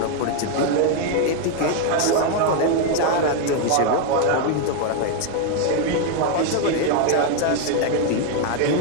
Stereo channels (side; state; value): both; different; correlation 0.00